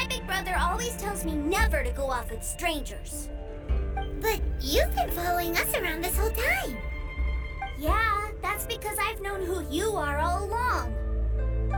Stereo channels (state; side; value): identical; both; correlation 1.00